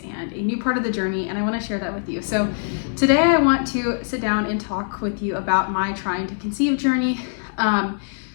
and a new part of the journey, and I want to share that with you. So today I want to sit down and talk with you about my trying to conceive journey,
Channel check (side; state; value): right; silent; digital silence